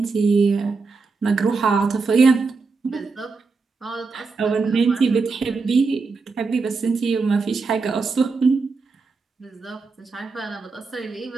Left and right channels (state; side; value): quieter; left; 4.4 dB